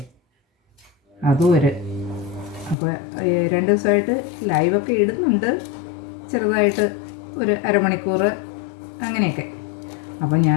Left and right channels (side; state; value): right; drops out; at 2.8 s